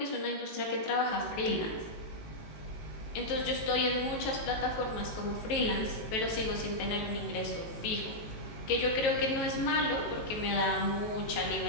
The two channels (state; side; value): late; right; 18 ms